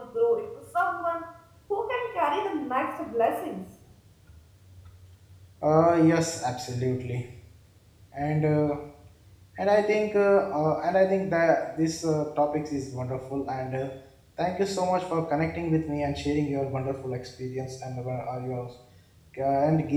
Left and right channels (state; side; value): identical; both; correlation 1.00